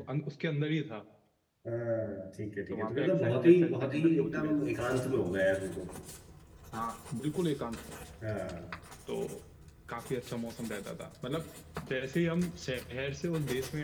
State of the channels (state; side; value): identical; both; correlation 1.00